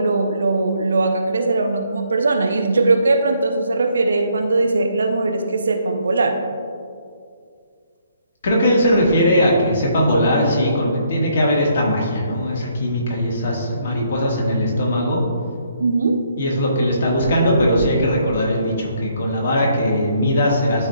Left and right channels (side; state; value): both; inverted; correlation -0.70